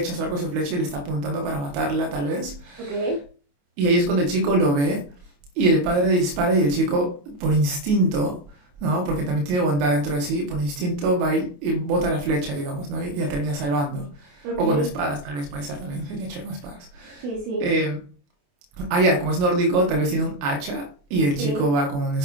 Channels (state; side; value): late; left; 28 ms